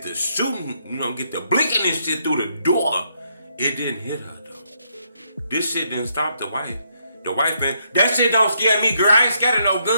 the shooting, get the blinking and shit through the door. It didn't hit her, though. This shit didn't stop the wife. The wife, man, that shit don't scare me, girl. I ain't scared of no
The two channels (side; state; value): both; inverted; correlation -0.75